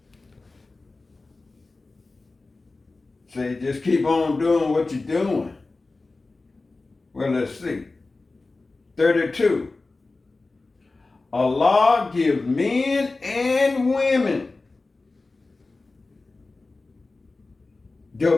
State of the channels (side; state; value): right; quieter; 3.5 dB